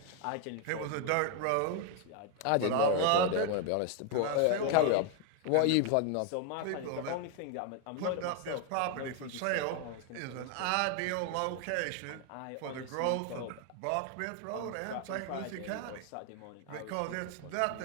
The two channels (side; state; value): both; different; correlation 0.01